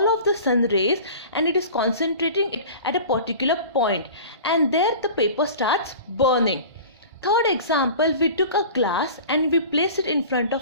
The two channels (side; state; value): both; inverted; correlation -0.39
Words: of the sun rays and it is concentrating it at a particular point, and there the paper starts burning. Third example, we took a glass and we placed it in front